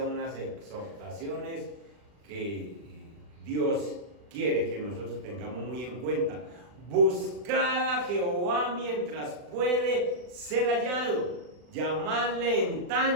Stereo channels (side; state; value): left; late; 40 ms